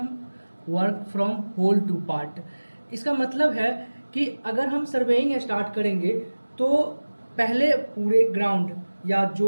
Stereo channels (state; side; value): inverted; both; correlation -1.00